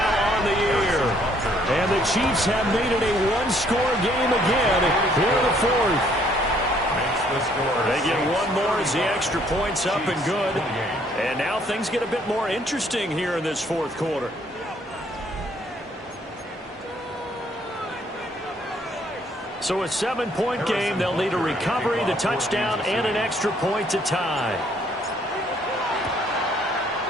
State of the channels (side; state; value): both; normal; correlation 0.65